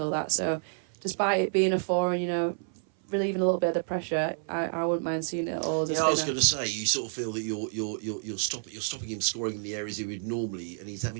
that. So, despite it being a 4 and relieving a little bit of the pressure, I wouldn't mind seeing it all as a spinner. I was going to say, you sort of feel that you're stopping him scoring in the areas he would normally, and he's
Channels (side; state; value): left; silent; 58 dB below the other